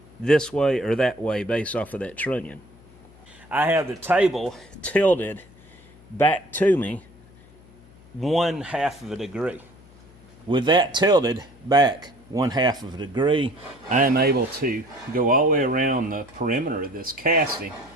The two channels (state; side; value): noise; left; hum, 25 dB below the sound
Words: this way or that way based off of that trunnion. I have the table tilted back to me 1/2 of a degree. With that tilted back 1/2 of a degree, I am able to go all the way around the perimeter of this casting